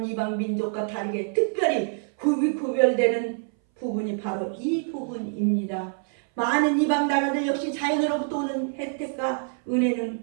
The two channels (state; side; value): silent; left; 59 dB below the other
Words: 이방 민족과 다르게 특별히 구별되는 부분이 바로 이 부분입니다. 많은 이방 나라들 역시 자연으로부터 오는 혜택과 은혜는